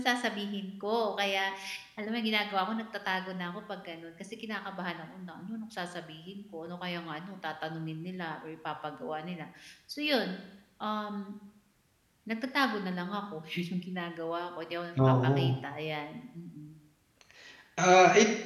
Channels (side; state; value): both; identical; correlation 1.00